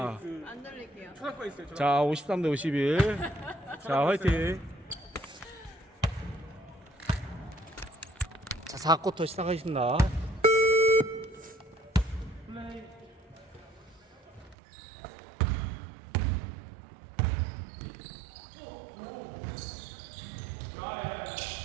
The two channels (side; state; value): left; drops out; at 14.6 s